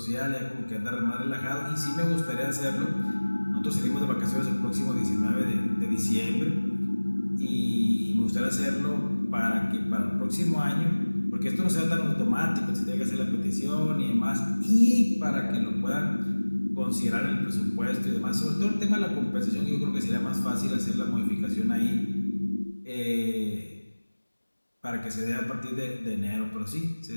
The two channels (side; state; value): both; inverted; correlation -1.00